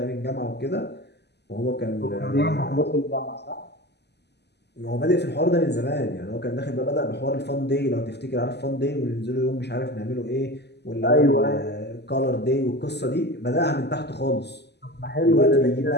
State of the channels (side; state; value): right; late; 0.49 ms